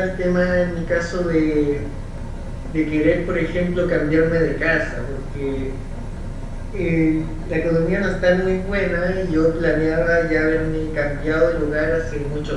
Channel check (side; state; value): both; identical; correlation 1.00